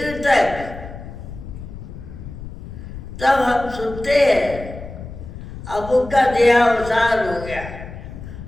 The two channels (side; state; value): left; noise; rumble, 12 dB below the sound